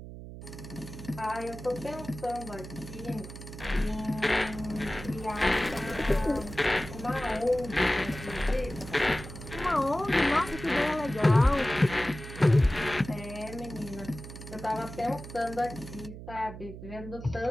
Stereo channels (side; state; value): right; noise; hum, 12 dB below the sound